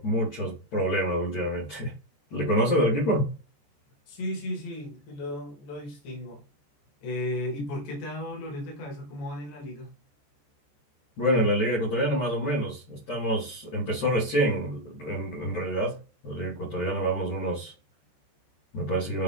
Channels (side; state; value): right; late; 14 ms